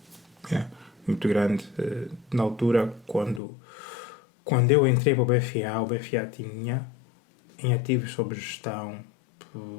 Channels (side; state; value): right; drops out; at 3.4 s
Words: é? Muito grande. Na altura, quando eu entrei para o BFA tinha em ativos sob gestão